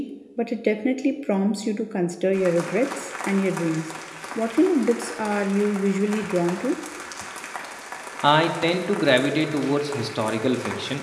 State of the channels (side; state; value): both; identical; correlation 1.00